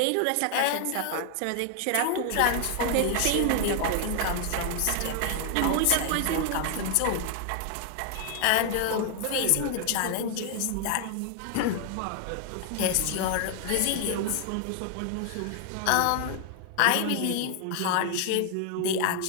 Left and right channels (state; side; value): different; both; correlation 0.00